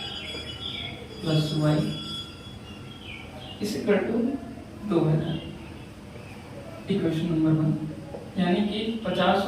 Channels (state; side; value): identical; both; correlation 1.00